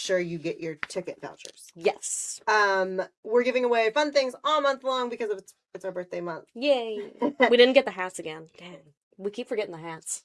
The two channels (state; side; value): identical; both; correlation 1.00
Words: you get your ticket vouchers. Yes. We're giving away fun things all month long because it's our birthday month. Yay. We didn't get the hats again. Dang. We keep forgetting the hats.